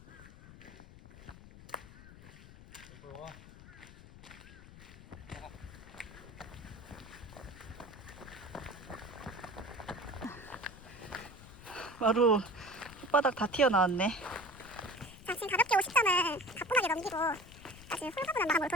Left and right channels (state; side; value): noise; left; rumble, 17 dB below the sound